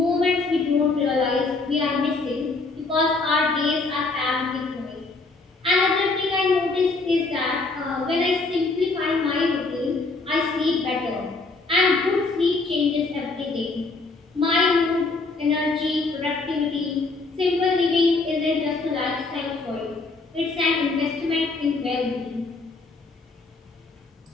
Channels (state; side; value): quieter; right; 3.7 dB